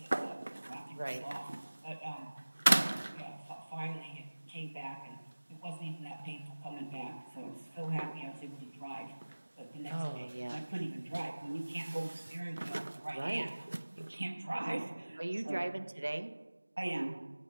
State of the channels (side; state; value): both; inverted; correlation -1.00